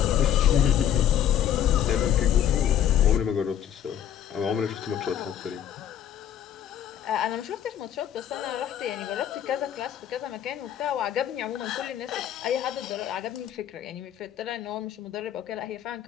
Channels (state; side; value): quieter; right; 10.2 dB